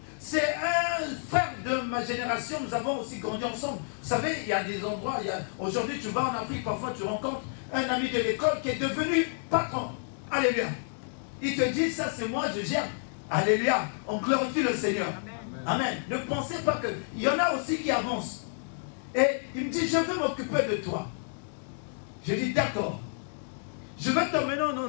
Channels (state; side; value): silent; right; digital silence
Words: C'est un frère de ma génération, nous avons aussi grandi ensemble. Vous savez, il y a des endroits, aujourd'hui tu vas en Afrique, parfois tu rencontres un ami de l'école qui est devenu patron. Alléluia. Il te dit, ça c'est moi, je gère. Alléluia. On glorifie le Seigneur. Amen. Amen. Ne pensez pas que... Il y en a aussi qui avancent. Et il me dit, je veux m'occuper de toi. Je dis, d'accord. Je vais t'emmener à un